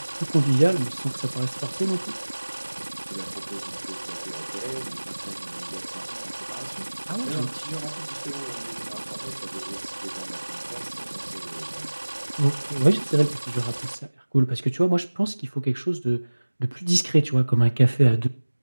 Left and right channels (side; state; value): both; inverted; correlation -1.00